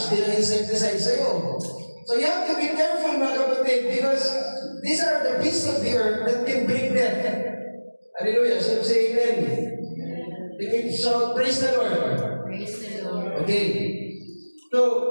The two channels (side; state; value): both; inverted; correlation -1.00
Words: din ang insecticide sa'yo. So you have to be careful, mga kapatid, because these are the beasts of the earth that can bring death. Hallelujah. So say amen. You can shout, praise the Lord. Praise the Lord. Okay. So,